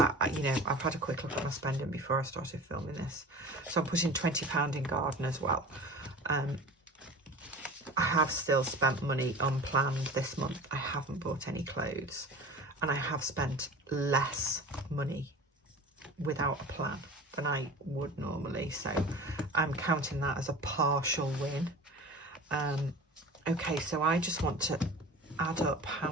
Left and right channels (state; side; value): normal; both; correlation 0.36